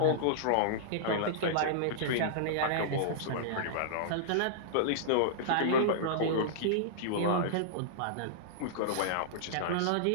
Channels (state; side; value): different; both; correlation -0.02